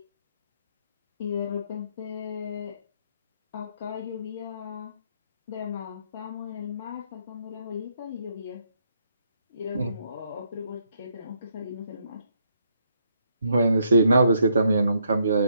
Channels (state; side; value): inverted; both; correlation -0.74